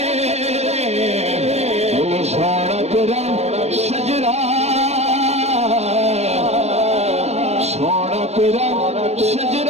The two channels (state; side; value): late; left; 0.31 ms